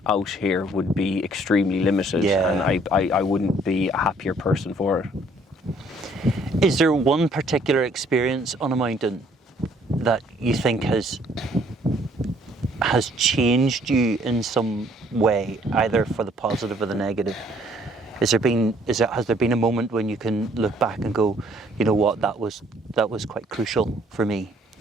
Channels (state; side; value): normal; both; correlation 0.62